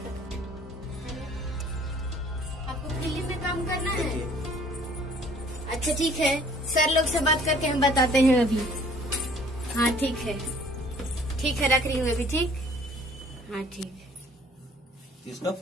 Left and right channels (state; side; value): normal; both; correlation 0.55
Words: आपको फिल्म में काम करना है? अच्छा ठीक है, सर लोग से बात करके हम बताते हैं अभी। हाँ ठीक है, रख रही हूँ अभी। ठीक। हाँ ठीक है। किसका